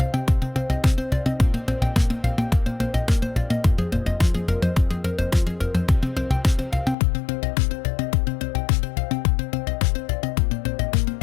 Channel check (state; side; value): drops out; right; at 7.0 s